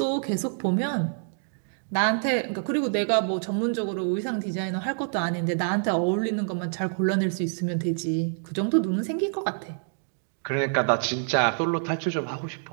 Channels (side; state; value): left; silent; 60 dB below the other